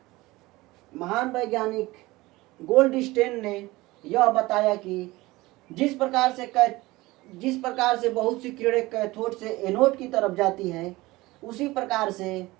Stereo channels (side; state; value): left; quieter; 20.1 dB